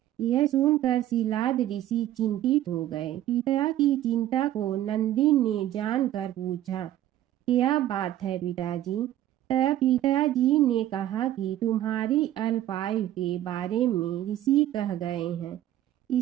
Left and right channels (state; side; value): quieter; left; 13.1 dB